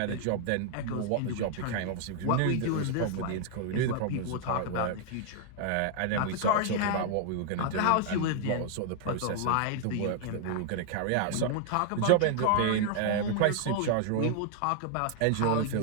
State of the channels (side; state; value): both; different; correlation 0.00